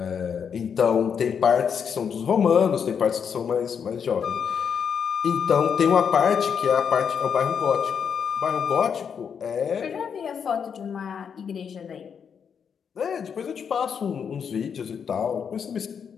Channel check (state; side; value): quieter; right; 7.1 dB